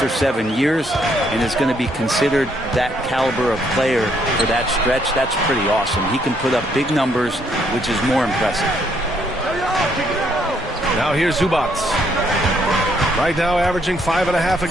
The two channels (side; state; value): both; normal; correlation 0.71